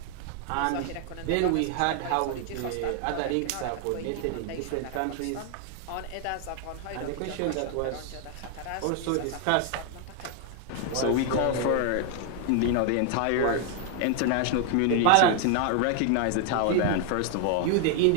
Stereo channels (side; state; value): both; different; correlation 0.00